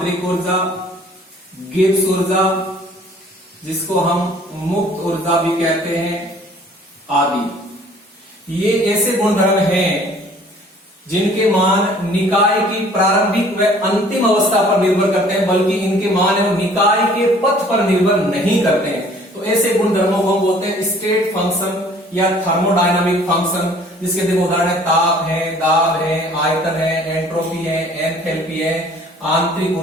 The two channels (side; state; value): both; normal; correlation 0.54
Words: ऊर्जा, गिब्स ऊर्जा जिसको हम मुक्त ऊर्जा भी कहते हैं, आदि। ये ऐसे गुणधर्म हैं जिनके मान निकाय की प्रारंभिक व अंतिम अवस्था पर निर्भर करते हैं, बल्कि इनके मान एवं निकाय के पथ पर निर्भर नहीं करते हैं। तो ऐसे गुणधर्मों को हम बोलते हैं स्टेट फंक्शन या थर्मोडायनामिक फंक्शन, जिसके देखो उदाहरण है ताप है, दाब है, आयतन है, एंट्रोपी है, एंथैल्पी है, आंतरिक